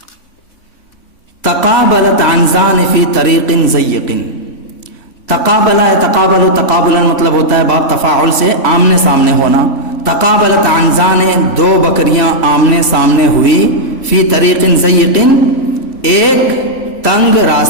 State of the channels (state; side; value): late; right; 3.5 ms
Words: تقابلت عنزان فی طریق ضیق، تقابلہ ہے، تقابل تقابلا مطلب ہوتا ہے باب تفاعل سے آمنے سامنے ہونا۔ تقابلت عنزان دو بکریاں آمنے سامنے ہوئی، فی طریق ضیق ایک تنگ